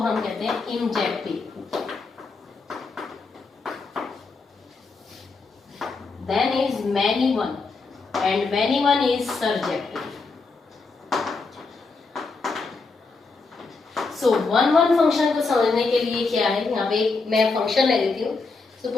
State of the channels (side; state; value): right; quieter; 4.1 dB